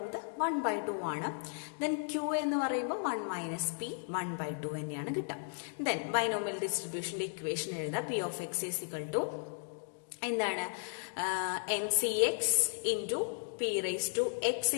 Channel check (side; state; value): right; silent; digital silence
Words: 1/2 ആണ്. ദെൻ ക്യൂ എന്ന് പറയുമ്പോൾ 1 മൈനസ് പി 1/2 തന്നെയാണ് കിട്ടുക. ദെൻ ബൈനോമിയൽ ഡിസ്ട്രിബ്യൂഷന്റെ ഇക്വേഷൻ എഴുതാം. P of X is equal to എന്താണ്? NCX into P raise to X